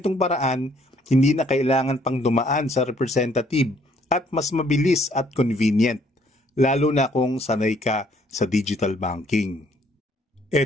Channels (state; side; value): normal; both; correlation 0.64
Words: paraan, hindi na kailangan pang dumaan sa representative at mas mabilis at convenient, lalo na kung sanay ka sa digital banking.